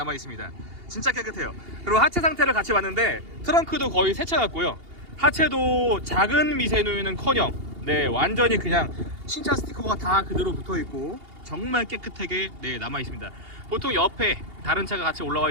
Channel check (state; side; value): late; left; 2.8 ms